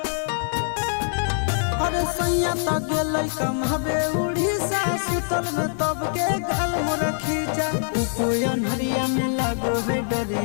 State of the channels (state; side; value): silent; right; digital silence